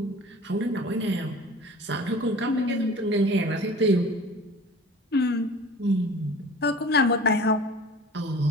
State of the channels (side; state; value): both; normal; correlation 0.42